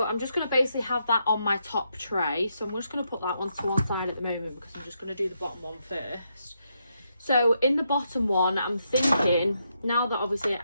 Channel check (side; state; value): both; inverted; correlation -0.80